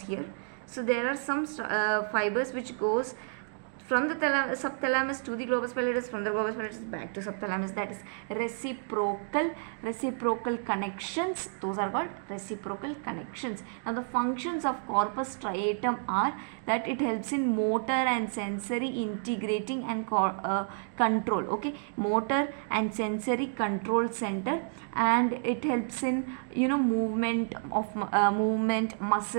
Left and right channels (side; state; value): left; silent; digital silence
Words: here. So there are some fibers which goes from the subthalamus to the globus pallidus, from the globus pallidus back to subthalamus. That is reciprocal connections. Those are called reciprocal connections. Now the functions of corpus striatum are that it helps in motor and sensory integrating and control. Okay, motor and sensory control center, and it helps in movement,